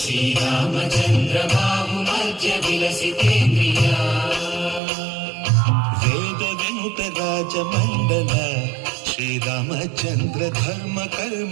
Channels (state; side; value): drops out; left; at 4.8 s